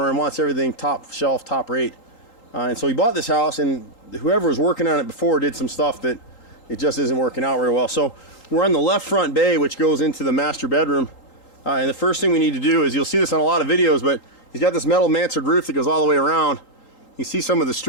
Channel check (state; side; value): late; right; 3.8 ms